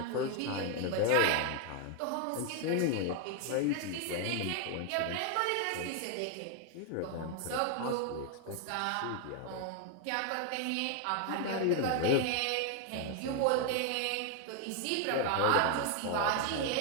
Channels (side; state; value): both; different; correlation 0.00